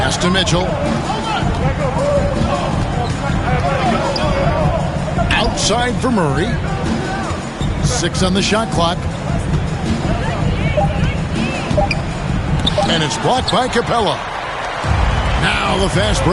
to Mitchell. Outside for Murray. 6 on the shot clock. And it's blocked by Capella. Now the fast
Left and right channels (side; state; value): both; identical; correlation 1.00